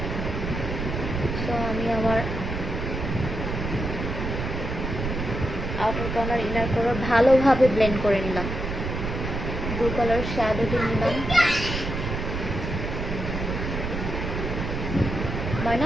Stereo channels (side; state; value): right; noise; rumble, 4 dB below the sound